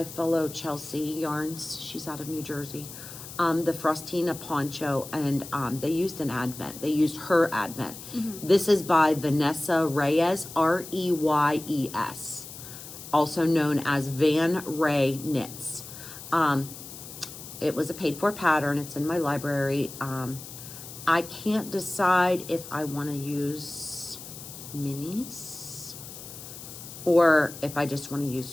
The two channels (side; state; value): left; noise; hiss, 13 dB below the sound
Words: follow Chelsea Yarns. She's out of New Jersey. The Frostina Poncho, and they used an Advent. They used her Advent. This is by Vanessa Reyes, Reyes, also known as Van Ray Knits. It was a paid-for pattern. It's in my library. I can't decide if I want to use minis or if I just want to use